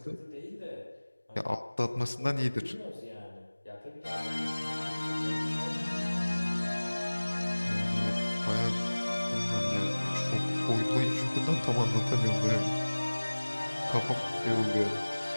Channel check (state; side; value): inverted; both; correlation -1.00